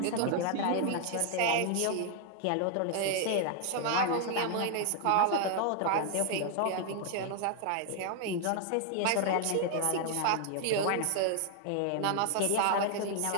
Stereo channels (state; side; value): different; both; correlation 0.00